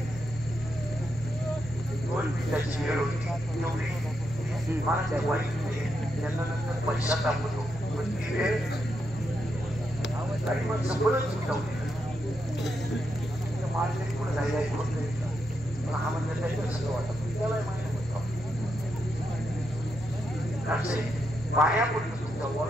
2 मिनिटाची वेळ होती एवढी मला त्या वाईट नाही. त्यांना नंतर पैसा दाखवतो पण ती वेळ काही मग सगळंच सुटवली मार्केट पुढे जायला ऐकून पण हा म्हणजे त्याच्यात सगळं वाटत त्याला माहिती होतं असे पायापुढे तुमच्या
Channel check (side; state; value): both; normal; correlation 0.82